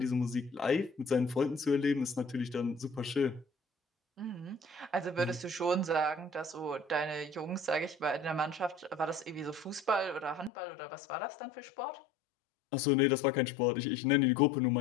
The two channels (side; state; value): right; drops out; at 10.5 s